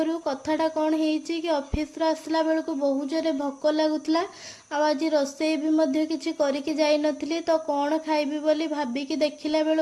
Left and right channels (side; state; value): both; identical; correlation 1.00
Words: कथाटा कौन हेइची कि ऑफिस रो आसला बेलकु बहुत जोरे भोक लागुतला। आज रोषेई भी मध्य किछि करिकि जाई नथिली। तो कौन खाइबी बोली भाबिकी देखिला